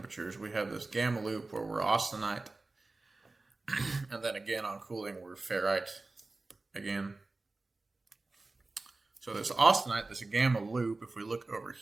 We have this gamma loop where we're austenite, and then again on cooling we're ferrite again. So this austenite, this gamma loop, if we look over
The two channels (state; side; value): quieter; left; 3.3 dB